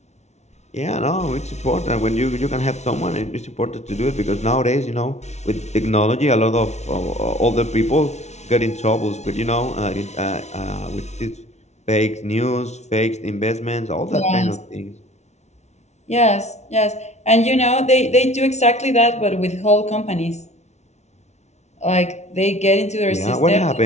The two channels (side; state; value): right; late; 0.32 ms